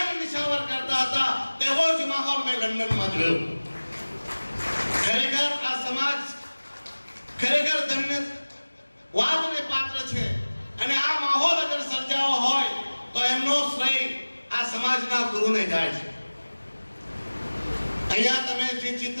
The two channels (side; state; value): both; inverted; correlation -1.00